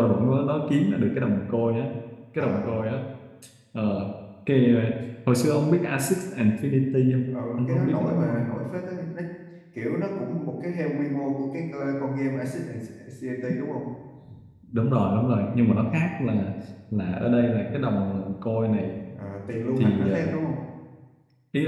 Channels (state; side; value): identical; both; correlation 1.00